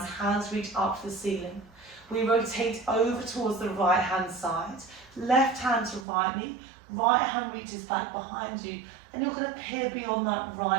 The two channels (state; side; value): drops out; left; at 6.1 s